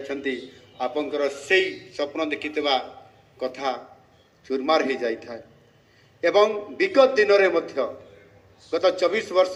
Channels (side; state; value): both; identical; correlation 1.00